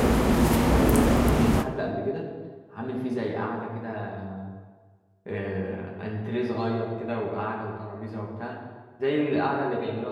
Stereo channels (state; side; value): identical; both; correlation 1.00